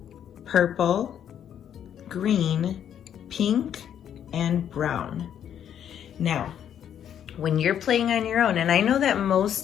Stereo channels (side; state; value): right; quieter; 9.5 dB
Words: purple, green, pink, and brown. Now, when you're playing on your own, and I know that